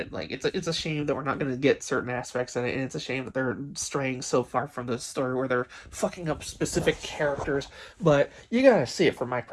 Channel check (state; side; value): identical; both; correlation 1.00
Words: Like, it's a shame that we're not going to get certain aspects in it, and it's a shame that they're straying so far from the story where they're fucking up specific characters. But you gotta see it from my